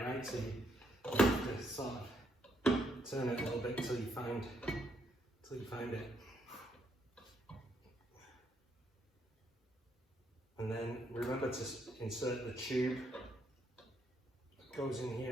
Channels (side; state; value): both; normal; correlation 0.74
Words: right? So you have to sort of turn it a little bit till you find it. And then remember to insert the tube that goes in